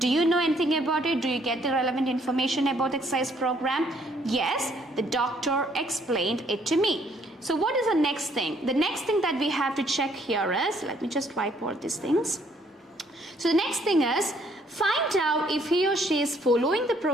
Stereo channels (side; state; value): both; normal; correlation 0.66